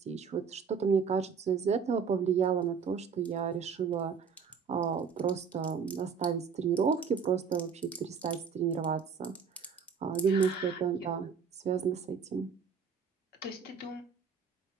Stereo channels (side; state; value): left; quieter; 6.2 dB